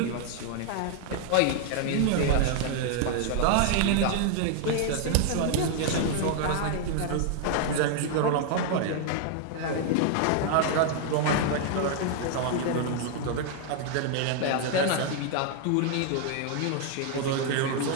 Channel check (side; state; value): both; different; correlation 0.00